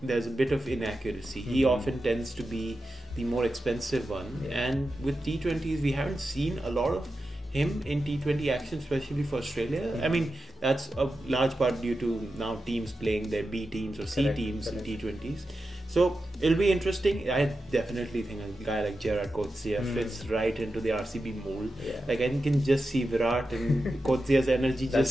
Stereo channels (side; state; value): both; normal; correlation 0.91